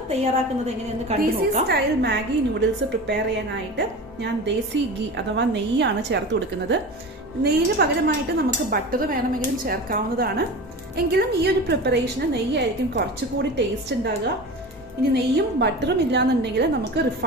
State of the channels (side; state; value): both; normal; correlation 0.32